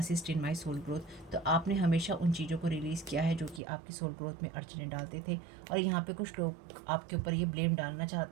in my soul growth, तो आपने हमेशा उन चीज़ों को रिलीज़ किया है जो कि आपकी सोल ग्रोथ में अड़चने डालते थे। और यहाँ पे कुछ लोग आपके ऊपर ये ब्लेम डालना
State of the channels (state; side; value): drops out; left; at 3.6 s